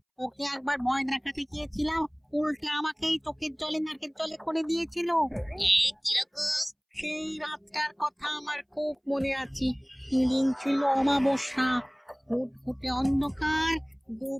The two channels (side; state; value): both; identical; correlation 1.00